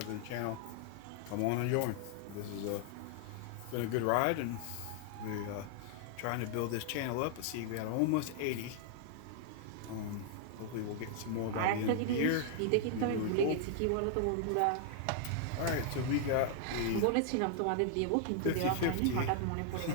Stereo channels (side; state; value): both; different; correlation 0.00